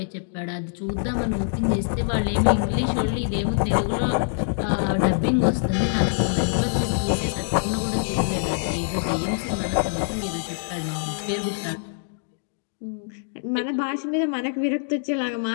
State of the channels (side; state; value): right; silent; digital silence